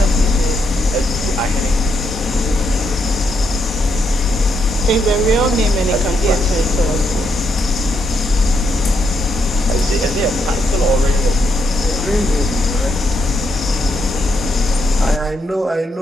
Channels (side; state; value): both; normal; correlation 0.78